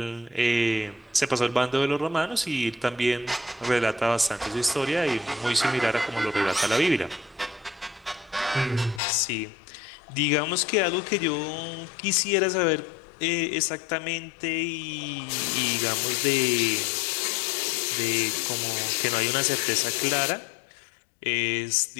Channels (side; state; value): right; drops out; at 9.0 s